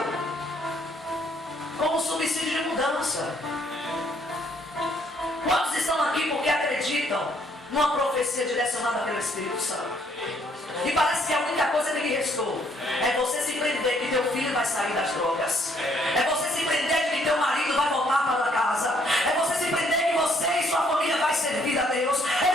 como subsídio de mudança. Quantos estão aqui porque acreditam numa profecia direcionada pelo Espírito Santo? E parece que a única coisa que lhe restou é você se prender que teu filho vai sair das drogas, é você se prender que teu marido vai voltar para casa, é você se prender que você e sua família vai servir a Deus, é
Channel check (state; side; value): normal; both; correlation 0.67